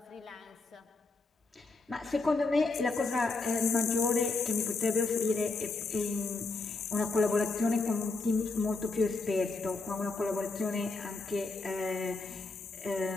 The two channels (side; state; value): right; quieter; 3.6 dB